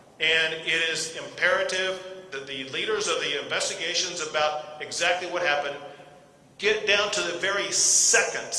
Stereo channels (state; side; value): identical; both; correlation 1.00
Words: And it is imperative that the leaders of the investigations about exactly what happened get down to the very